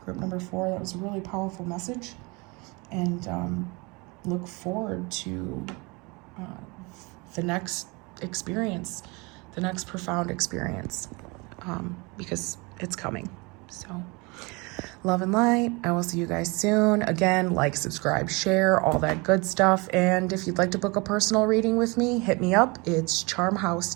group number 4. That was a really powerful message. And look forward to the next experience, the next profound experience, because it's coming. So love and light. I will see you guys soon. Again, like, subscribe, share, all that good stuff. And if you'd like to book a personal reading with me, hit me up. It's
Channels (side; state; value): left; quieter; 27.4 dB